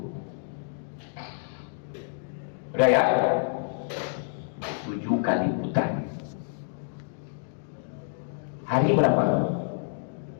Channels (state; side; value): silent; right; digital silence